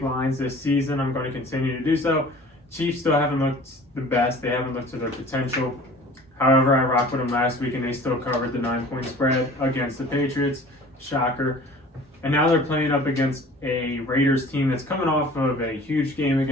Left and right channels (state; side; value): normal; both; correlation 0.46